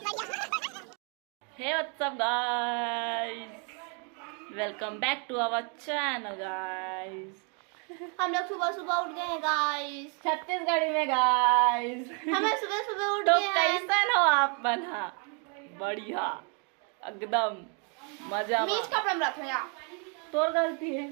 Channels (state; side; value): quieter; left; 37.2 dB